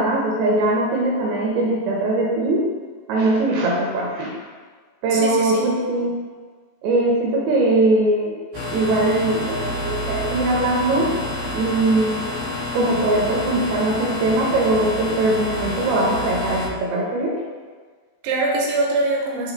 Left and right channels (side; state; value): left; late; 18 ms